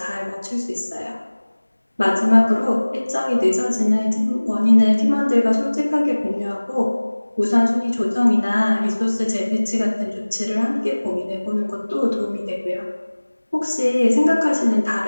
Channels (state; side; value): inverted; both; correlation -1.00